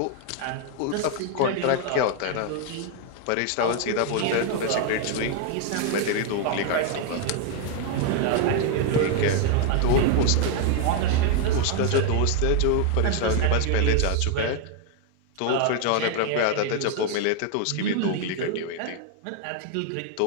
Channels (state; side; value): different; both; correlation 0.00